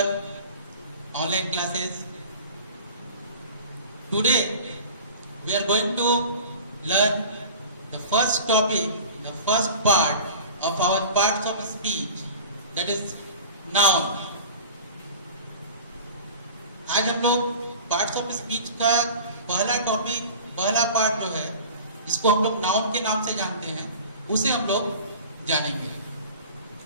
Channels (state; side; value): inverted; both; correlation -0.38